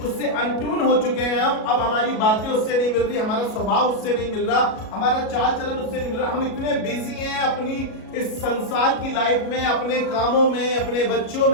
उससे अनट्यून हो चुके हैं। अब हमारी बातें उससे नहीं मिल रही, हमारा स्वभाव उससे नहीं मिल रहा, हमारा चाल चलन उससे नहीं मिल रहा। हम इतने बिजी हैं अपनी इस संसार की लाइफ में, अपने कामों में, अपने बच्चों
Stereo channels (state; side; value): late; right; 37 ms